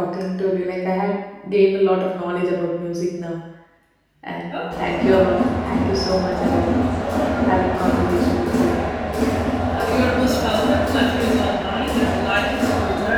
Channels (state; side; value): identical; both; correlation 1.00